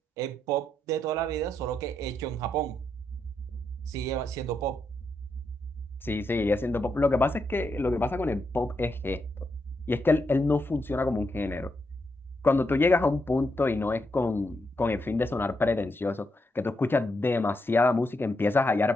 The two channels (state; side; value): normal; both; correlation 0.82